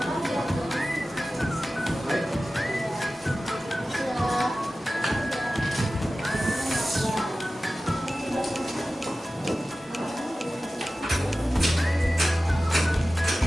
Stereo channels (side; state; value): both; normal; correlation 0.95